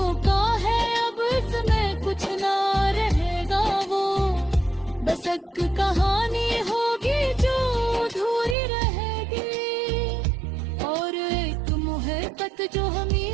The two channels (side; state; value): left; drops out; at 8.6 s